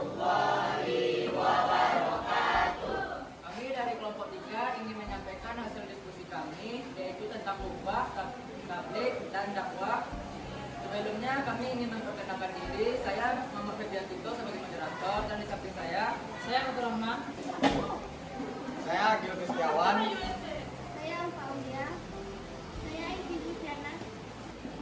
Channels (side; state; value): both; identical; correlation 1.00